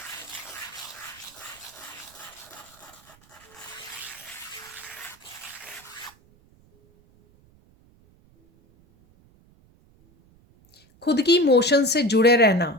खुद की इमोशन से जुड़े रहना,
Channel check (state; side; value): noise; right; rumble, 29 dB below the sound